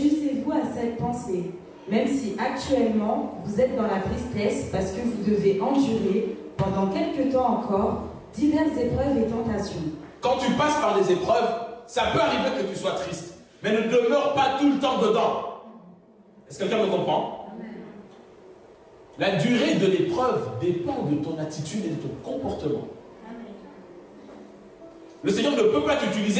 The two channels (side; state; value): both; identical; correlation 1.00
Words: à cette pensée, même si actuellement vous êtes dans la tristesse parce que vous devez endurer pendant quelque temps encore diverses épreuves et tentations. Quand tu passes par des épreuves, ça peut arriver que tu sois triste, mais ne demeure pas tout le temps dedans. Est-ce que quelqu'un me comprend? La durée de l'épreuve dépend de ton attitude et de ton comportement. Le Seigneur ne peut pas